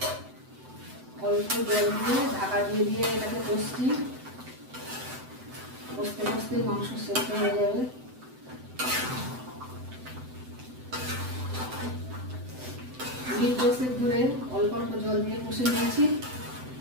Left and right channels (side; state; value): left; late; 7.9 ms